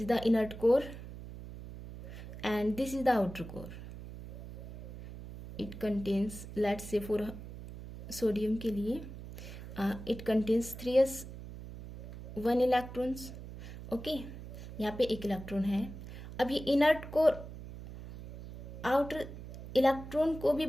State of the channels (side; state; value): right; noise; hum, 12 dB below the sound